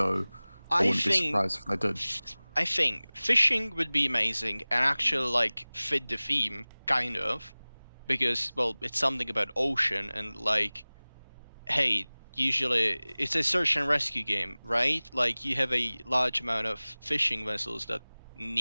I wouldn't be surprised if they did. I think fishing would be amazing and actually fit the theme, kind of, because it's something about ocean and hey, usually it's a search and rescue game, right? You have a large amount of fishing vessels that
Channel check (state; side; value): inverted; both; correlation -1.00